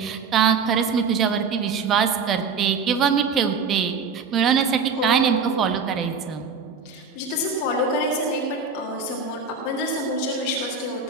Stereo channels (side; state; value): left; quieter; 5.1 dB